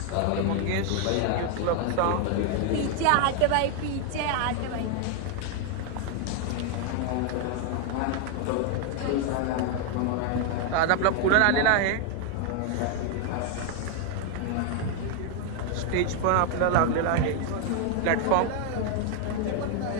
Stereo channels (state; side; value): different; both; correlation 0.00